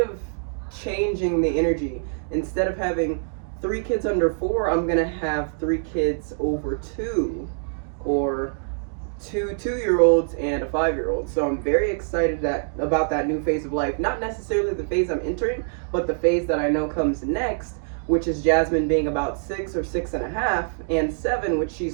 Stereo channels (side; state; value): left; silent; digital silence